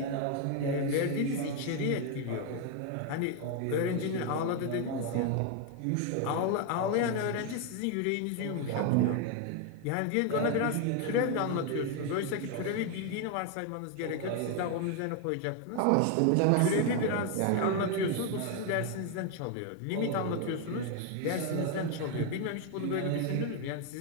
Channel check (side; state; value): both; different; correlation 0.01